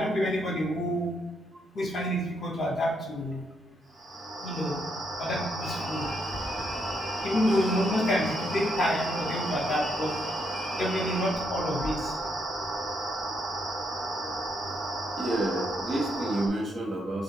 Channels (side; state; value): both; normal; correlation 0.77